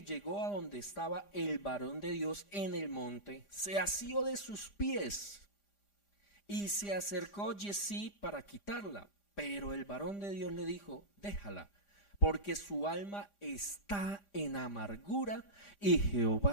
llegó a donde estaba el varón de Dios en el monte, se asió de sus pies y se acercó Giezi para quitarla. Pero el varón de Dios le dijo, déjala, porque su alma está en amargura y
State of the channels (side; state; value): right; late; 5.0 ms